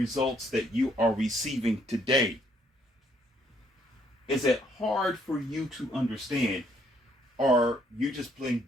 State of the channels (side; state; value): both; normal; correlation 0.68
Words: that you are receiving today. Is it hard for you to understand or you just plain